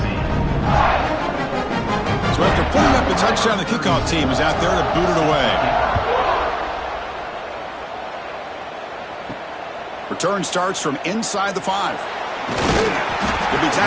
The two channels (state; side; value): identical; both; correlation 1.00